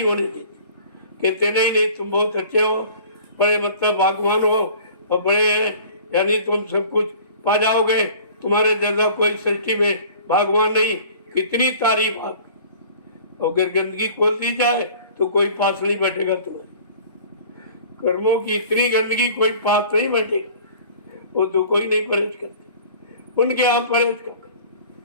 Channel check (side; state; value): both; inverted; correlation -0.47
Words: होने देते, कहते नहीं तुम बहुत अच्छे हो, बड़े मतलब भगवान हो और बड़े यानी तुम सब कुछ पा जाओगे, तुम्हारे जैसा कोई सृष्टि में भगवान नहीं। कितनी तारीफ आप, अगर गंदगी खोल दी जाए तो कोई पास नहीं बैठेगा। तुम्हारे कर्मों की इतनी गंदगी कोई पास नहीं बैठेगा, वो तो कोई नहीं परहेज करते। उनके यहाँ परहेज कर,